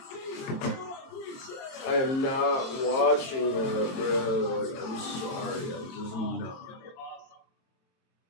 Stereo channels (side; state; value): right; late; 22 ms